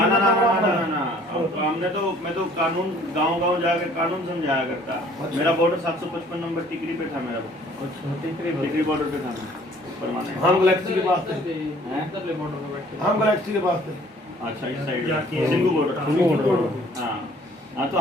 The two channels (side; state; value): both; normal; correlation 0.56